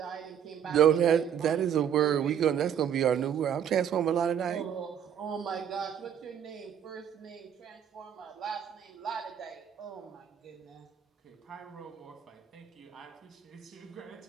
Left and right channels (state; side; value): quieter; left; 8.9 dB